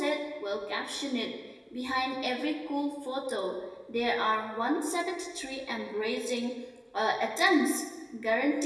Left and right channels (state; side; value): identical; both; correlation 1.00